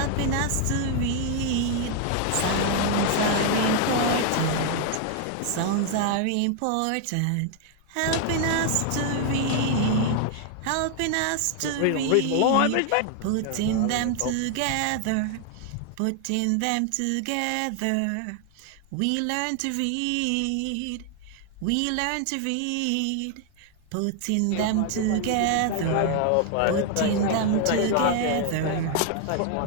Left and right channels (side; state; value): both; different; correlation 0.00